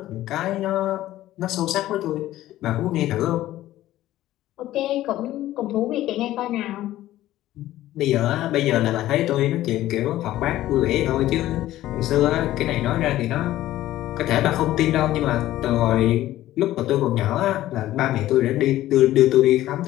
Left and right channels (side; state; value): right; quieter; 14.6 dB